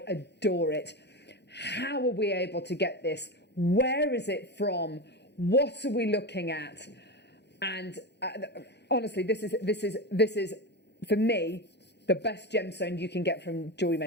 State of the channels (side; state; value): right; late; 0.50 ms